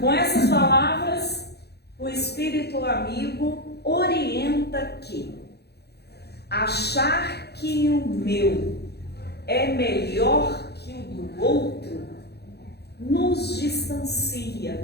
essas palavras, o Espírito Amigo orienta que achar que o meu é melhor que o do outro nos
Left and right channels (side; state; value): right; late; 0.48 ms